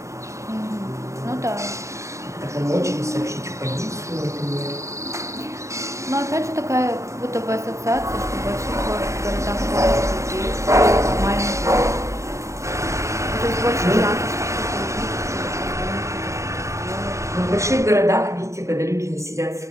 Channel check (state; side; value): late; left; 0.14 ms